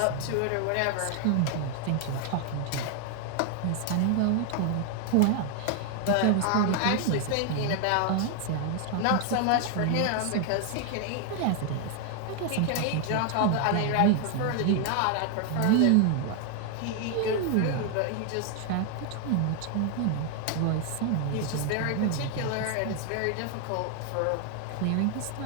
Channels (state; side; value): different; both; correlation 0.00